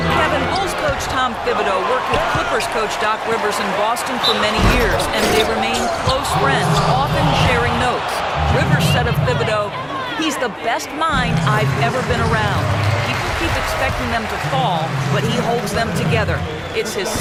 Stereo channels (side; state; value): both; identical; correlation 1.00